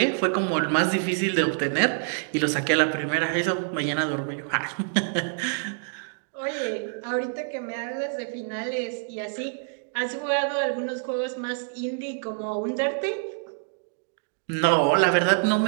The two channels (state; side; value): silent; left; digital silence